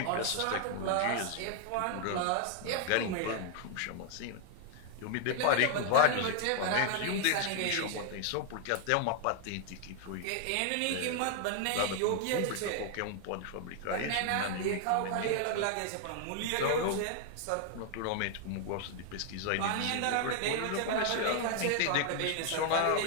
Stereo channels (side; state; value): both; different; correlation 0.00